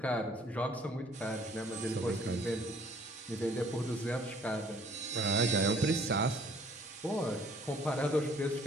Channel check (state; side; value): normal; both; correlation 0.58